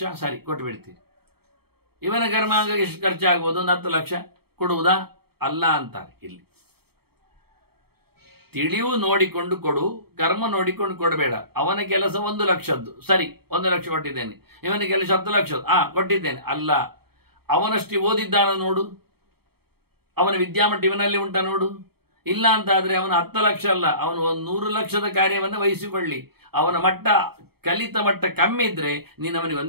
ಸರಿ ಕೊಟ್ಟು ಬಿಡ್ತೀರಿ. ಇವನ ಕರ್ಮಾಂಗಕ್ಕೆ ಎಷ್ಟು ಖರ್ಚಾಗ್ಬೋದು? 10 ಲಕ್ಷ ಕೊಡುವುದಾ? ಅಲ್ಲ ಅಂತಾರೆ ಇಲ್ಲಿ. ತಿಳಿವು ನೋಡಿಕೊಂಡು ಕೊಡು, ಕರ್ಮ ನೋಡಿಕೊಂಡು ಕೊಡಬೇಡ. ಅವನ ಕೆಲಸ 1 ಲಕ್ಷದ್ದು, ಸರಿ 1 ಲಕ್ಷ ಕೊಟ್ಟಿದ್ದೇನೆ. ಇವನ ಕೆಲಸ 10 ಲಕ್ಷದ್ದು, ಕೊಟ್ಟಿದ್ದೇನೆ. ಅಲ್ಲ, ಅವನಷ್ಟು ಓದಿದ್ದಾನ ನೋಡು, ಅವನ ವಿದ್ಯಾಮಟ್ಟ ಇವನಲ್ಲಿ ಉಂಟ ನೋಡು. ಇಲ್ಲ ಅಂತ ಆದ್ರೆ ಅವನ 10 ಲಕ್ಷ ಅಲ್ಲ, ಅವನು 100 ಲಕ್ಷದ ಕಾರ್ಯವನ್ನು ವಹಿಸಿಕೊಳ್ಳಿ. ಅವನ ಮಟ್ಟ, ಕಲಿತ ಮಟ್ಟ ಕಮ್ಮಿ ಇದ್ರೆ ನೀನು ಅವನಿಗೆ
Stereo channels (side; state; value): left; late; 0.96 ms